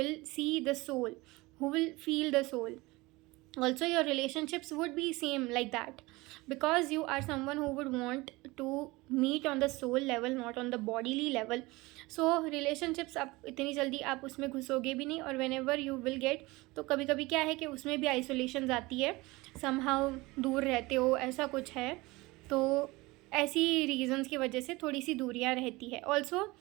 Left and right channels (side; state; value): left; quieter; 22.1 dB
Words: see the soul, who will feel the soul. Also your relationships would be same like that, because you are someone who would want to meet on the soul level, not on the bodily level. So relationships आप इतनी जल्दी आप उसमें घुसोगे भी नहीं, और whenever you will get, तो कभी कभी क्या है कि उसमें भी आइसोलेशन आती है, somehow दूर रहते हो, ऐसा कुछ है। तो ऐसी रीजंस की वजह से थोड़ी सी दूरियां रहती है। ऑल्सो